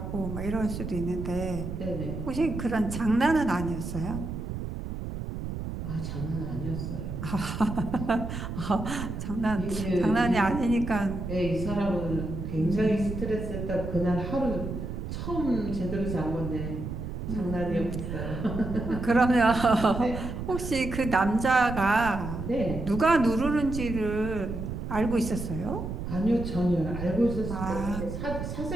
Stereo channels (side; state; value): right; noise; rumble, 6 dB below the sound